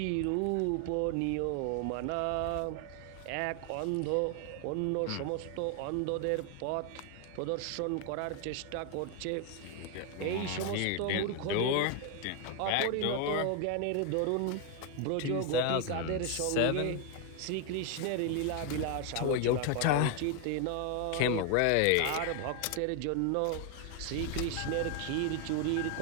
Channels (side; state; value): both; different; correlation 0.01